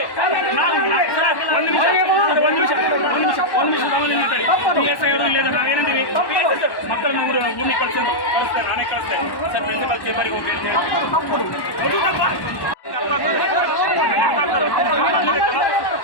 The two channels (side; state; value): right; late; 1.1 ms